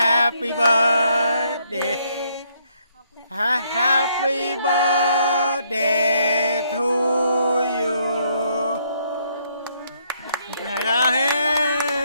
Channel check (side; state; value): both; inverted; correlation -0.71